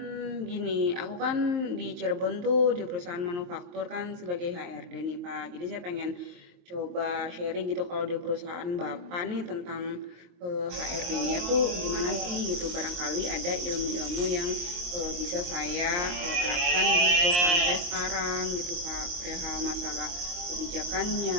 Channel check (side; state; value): left; late; 23 ms